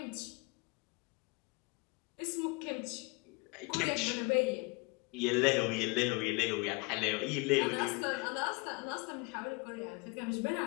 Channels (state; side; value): quieter; right; 27.7 dB